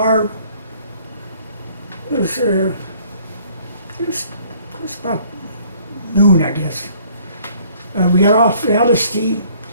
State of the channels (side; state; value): both; inverted; correlation -0.58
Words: It was about noon, I guess. We got off the LST,